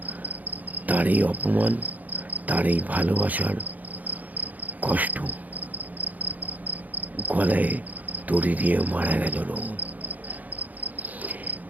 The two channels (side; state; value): left; late; 0.079 ms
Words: তার এই অপমান, তার এই ভালোবাসার কষ্ট। গলায় দড়ি দিয়ে মারা গেল রোহন।